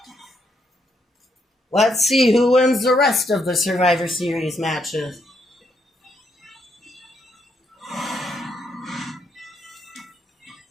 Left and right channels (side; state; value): both; normal; correlation 0.76